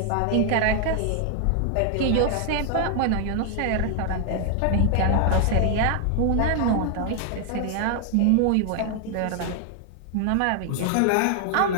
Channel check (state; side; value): different; both; correlation 0.00